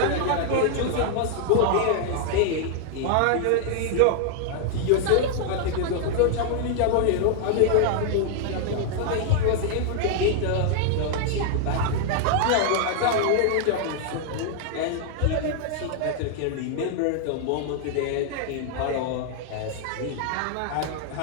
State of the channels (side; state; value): both; different; correlation 0.00